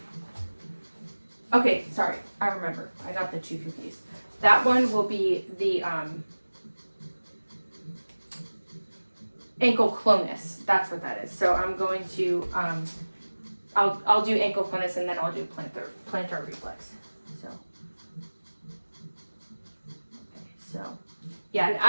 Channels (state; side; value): inverted; both; correlation -1.00